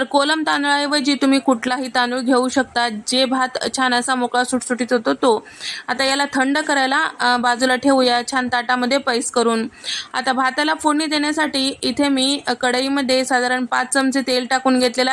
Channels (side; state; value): both; identical; correlation 1.00